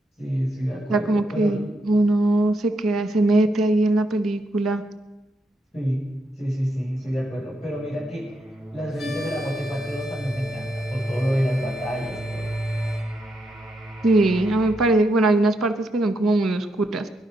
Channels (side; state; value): both; normal; correlation 0.80